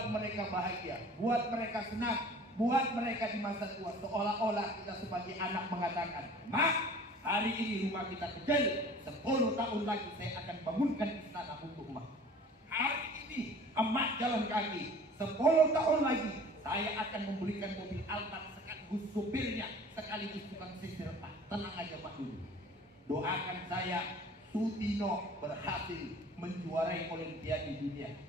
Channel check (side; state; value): both; normal; correlation 0.46